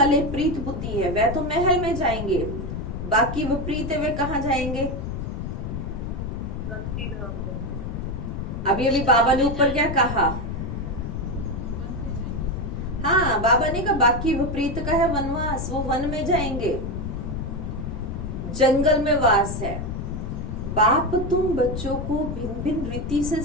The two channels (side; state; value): left; noise; rumble, 5 dB below the sound